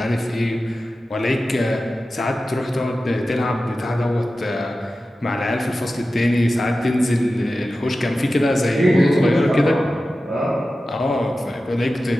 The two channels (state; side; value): normal; both; correlation 0.94